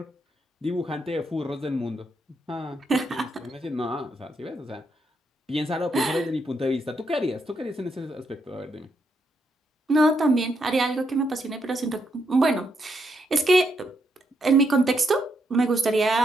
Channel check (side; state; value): both; normal; correlation 0.79